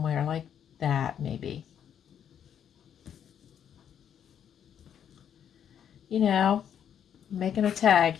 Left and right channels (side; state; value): right; quieter; 8.9 dB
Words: like that, maybe. You know, making a tag